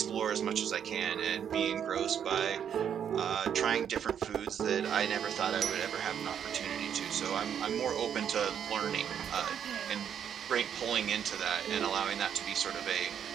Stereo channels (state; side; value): quieter; left; 8.6 dB